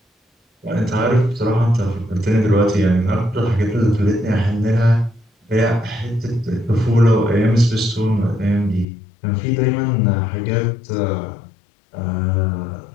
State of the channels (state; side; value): drops out; right; at 8.8 s